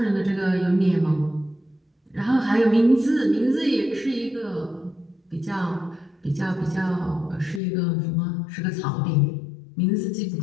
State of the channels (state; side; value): drops out; right; at 7.6 s